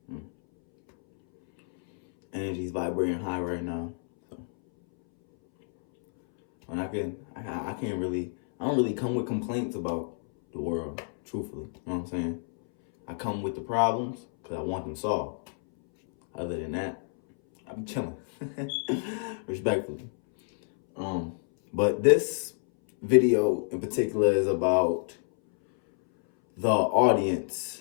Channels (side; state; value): right; silent; 59 dB below the other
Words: Energy's vibrating high right now. So, and I can't really, I don't really come with complaints about the world, truthfully. You know what I'm saying? I come with the problems because I want them solved. Other than that, I be chilling. Respectfully. But this video in particular is about the